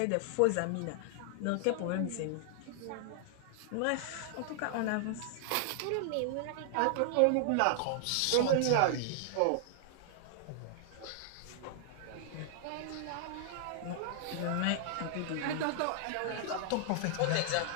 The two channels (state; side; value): different; both; correlation -0.01